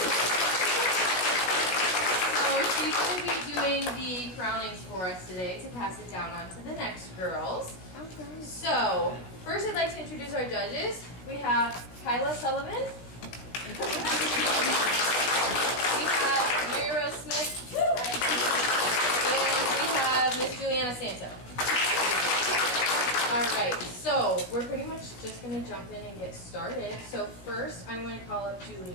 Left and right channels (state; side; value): late; right; 16 ms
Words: she's going to be doing the crownings for us today to pass it down on to the next girls. Okay. So, first I'd like to introduce our judges. We have Kyla Sullivan. We have Mary Rose Smith. And we have Miss Juliana Santo. Alright, so we're pretty much just going to jump in and get started. So first I'm going to call up